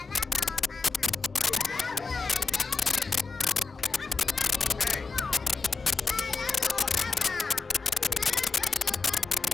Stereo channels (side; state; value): right; quieter; 4.4 dB